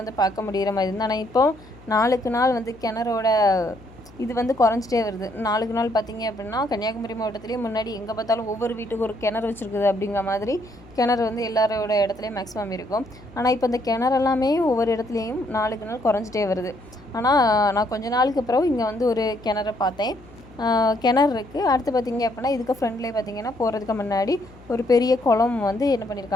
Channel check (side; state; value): left; noise; hum, 23 dB below the sound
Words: பார்க்க முடிகிற மாதிரி இருந்தால், ஆனால் இப்போது நாளுக்கு நாள் வந்து கிணறோட இது வந்து குறைஞ்சிட்டே வருது. நாளுக்கு நாள் பார்த்திங்க அப்படின்னா கன்னியாகுமரி மாவட்டத்துலேயே முன்னாடி எங்கே பார்த்தாலும் ஒவ்வொரு வீட்டுக்கு ஒரு கிணறு வச்சுருக்குது அப்படிங்கிற மாதிரி கிணறு வந்து எல்லாரோட இடத்துலையும் மேக்ஸிமம் இருக்கும். ஆனால் இப்போ இந்த கிணறெல்லாமே ஒவ்வொரு இடத்துலையும் நாளுக்கு நாள் குறைஞ்சிட்டே வருது. ஆனால் நான் கொஞ்ச நாளுக்கு அப்புறம் இங்கே வந்து ஒரு கிணறை பார்த்தேன். கிணறு இருக்குது. அடுத்து பார்த்திங்க அப்படின்னா இதுக்கு ஃப்ரெண்ட்லேயே பார்த்திங்கன்னா போகிறதுக்கு முன்னாடி ஒரு பெரிய குளம் வந்து என்ன